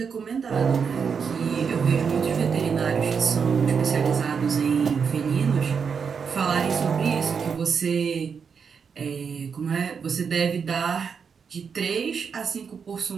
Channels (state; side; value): quieter; left; 6.2 dB